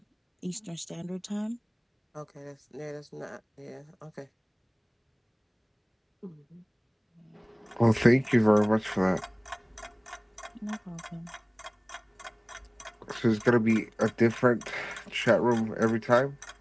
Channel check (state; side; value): identical; both; correlation 1.00